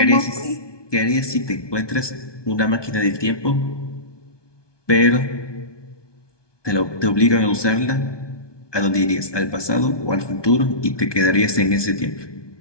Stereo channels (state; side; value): late; right; 1.2 ms